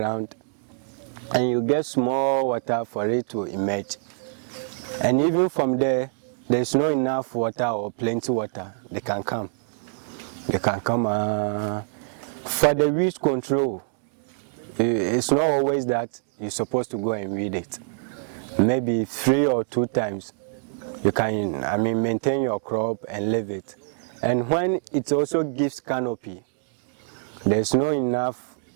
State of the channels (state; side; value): silent; left; digital silence